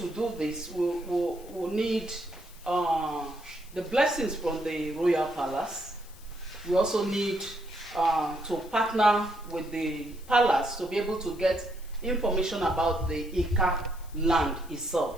do this, we'll need the blessings from the Royal Palace. We also need to partner with the palace to be able to get information about the Ika land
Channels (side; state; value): left; noise; hiss, 22 dB below the sound